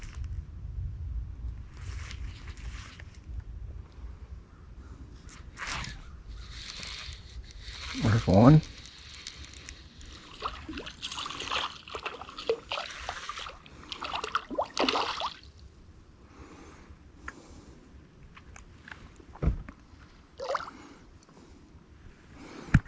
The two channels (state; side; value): identical; both; correlation 1.00